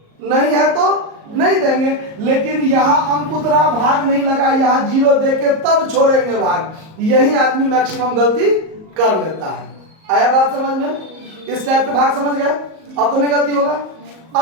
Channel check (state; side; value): late; left; 38 ms